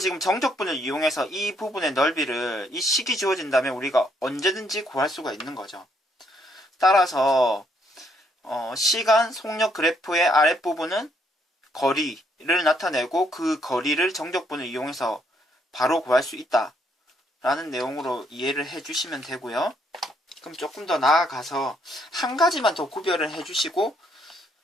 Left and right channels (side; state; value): both; normal; correlation 0.71